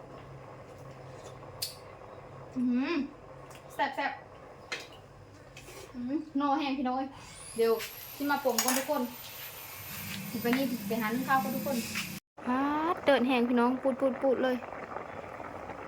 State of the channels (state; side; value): identical; both; correlation 1.00